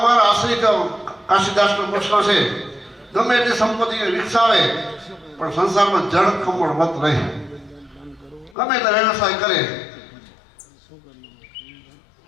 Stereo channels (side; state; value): right; drops out; at 8.6 s